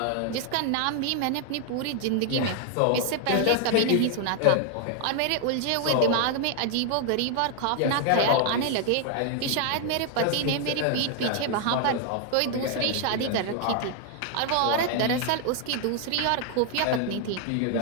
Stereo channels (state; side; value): different; both; correlation 0.00